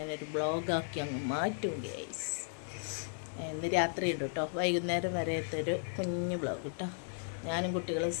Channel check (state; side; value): silent; right; digital silence